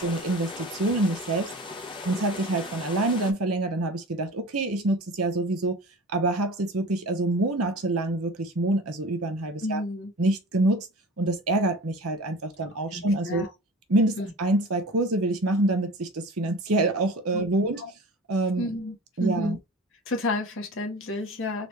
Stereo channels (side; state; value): both; normal; correlation 0.38